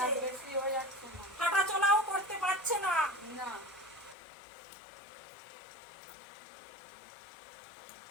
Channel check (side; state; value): right; drops out; at 4.2 s